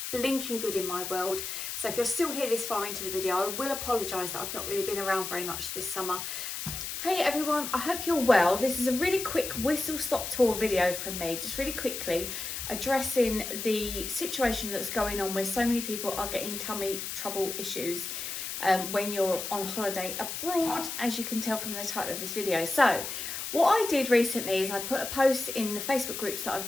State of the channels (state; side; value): noise; left; hiss, 5 dB below the sound